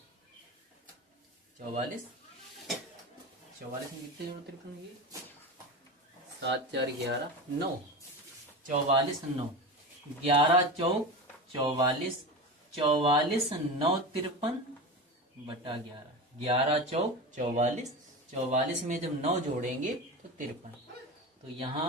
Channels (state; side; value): normal; both; correlation 0.26